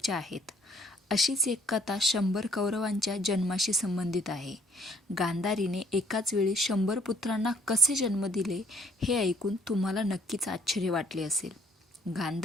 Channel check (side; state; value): both; normal; correlation 0.61